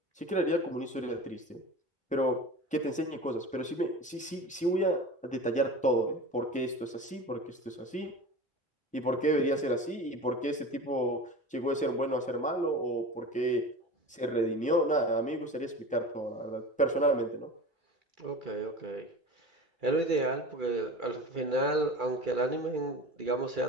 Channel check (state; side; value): normal; both; correlation 0.33